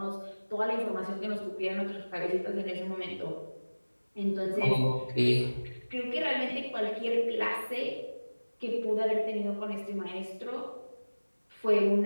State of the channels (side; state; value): both; inverted; correlation -1.00